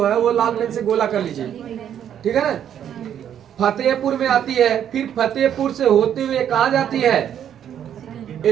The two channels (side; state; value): left; quieter; 9.6 dB